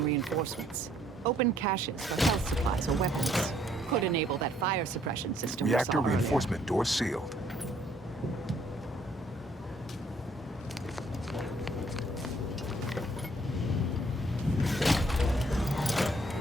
reinforcements, open caches for health supplies or weapons. Could enable that fire suppression system we Reactor saw earlier. reinforcement door sealed.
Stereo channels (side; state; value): both; normal; correlation 0.65